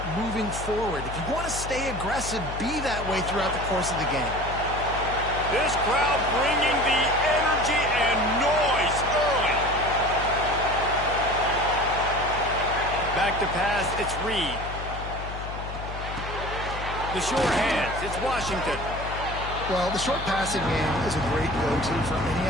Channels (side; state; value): left; noise; hum, 8 dB below the sound